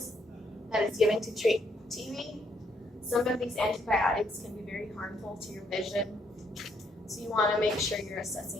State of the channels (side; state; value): both; normal; correlation 0.72